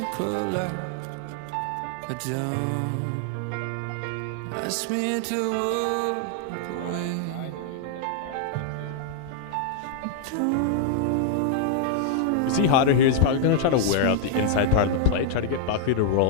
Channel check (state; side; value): different; both; correlation -0.01